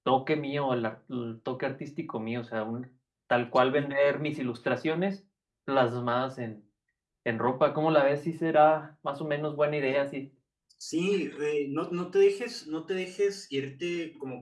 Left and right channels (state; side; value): identical; both; correlation 1.00